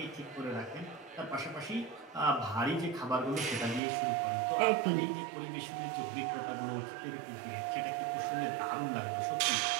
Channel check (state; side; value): drops out; left; at 3.8 s